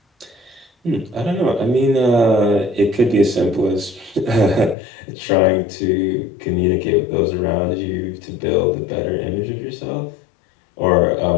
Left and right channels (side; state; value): right; drops out; at 4.8 s